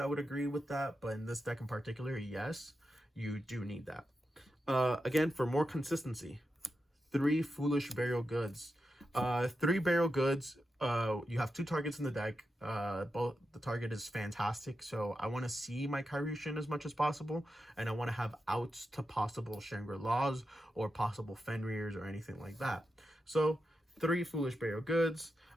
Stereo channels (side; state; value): both; normal; correlation 0.88